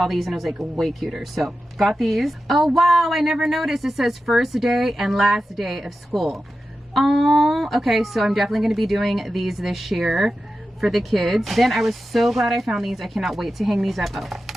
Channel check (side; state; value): both; normal; correlation 0.92